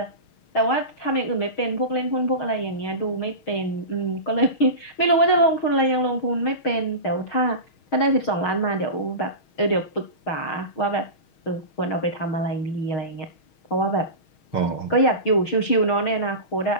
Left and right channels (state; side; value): late; right; 6.4 ms